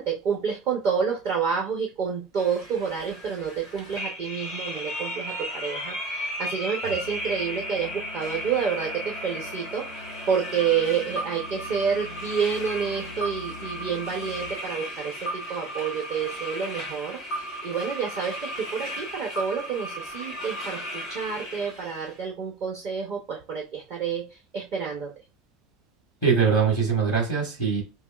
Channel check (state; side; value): quieter; left; 5.1 dB